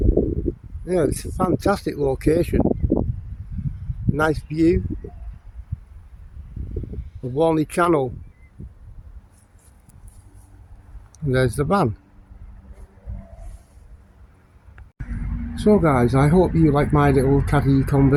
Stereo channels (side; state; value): both; identical; correlation 1.00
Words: Yeah, it's a fantastic location. Nice view of Warney Channel. And there's the van. So guys, I hope you like my little caddy